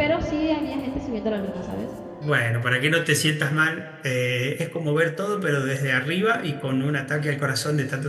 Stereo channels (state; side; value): identical; both; correlation 1.00